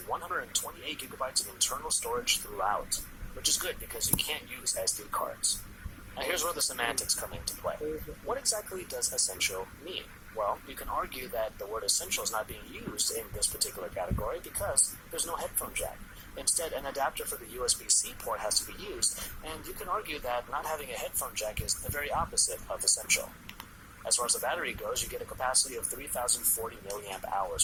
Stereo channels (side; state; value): both; identical; correlation 1.00